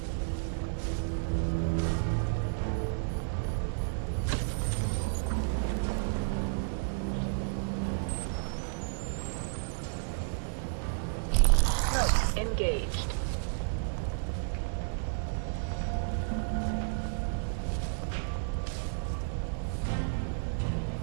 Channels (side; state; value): left; silent; digital silence